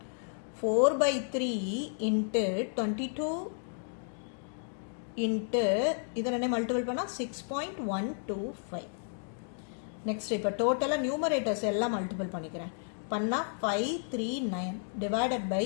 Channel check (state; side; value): silent; right; digital silence